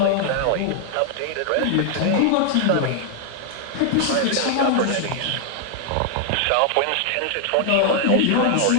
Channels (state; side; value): different; both; correlation 0.00